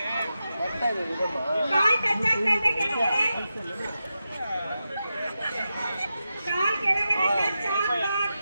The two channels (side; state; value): both; inverted; correlation -0.91